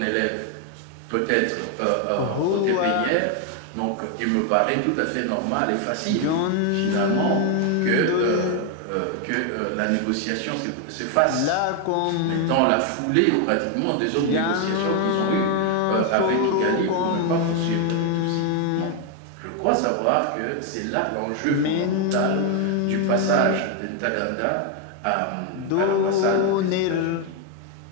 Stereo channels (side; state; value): both; different; correlation 0.01